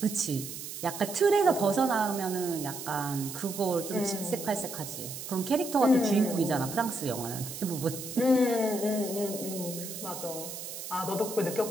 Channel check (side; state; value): right; noise; hiss, 9 dB below the sound